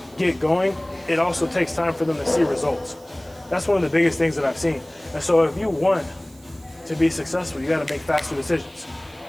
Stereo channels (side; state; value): right; noise; hiss, 27 dB below the sound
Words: get going, it also takes time for them to see results. That's one of the biggest things that I've seen. And so if you want to be successful, you got to make faster decisions